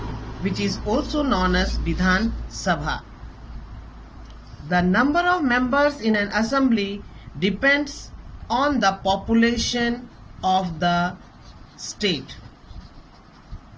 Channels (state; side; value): identical; both; correlation 1.00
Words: which is also known as Vidhan Sabha. The number of members in an assembly depends on the population of the state.